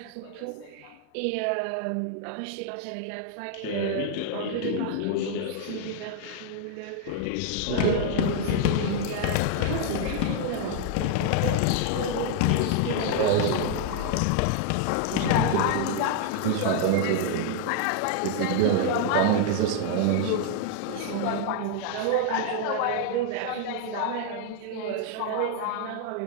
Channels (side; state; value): both; different; correlation 0.00